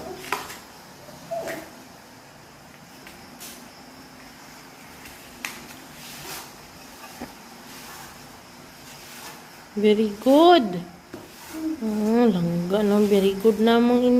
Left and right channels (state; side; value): identical; both; correlation 1.00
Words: Very good. Langga lang. Very good namang